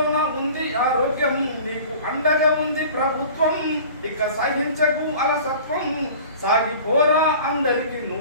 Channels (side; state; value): both; inverted; correlation -0.43